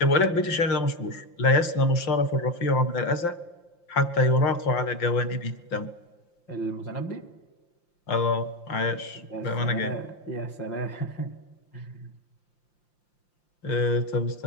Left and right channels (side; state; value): right; late; 5.8 ms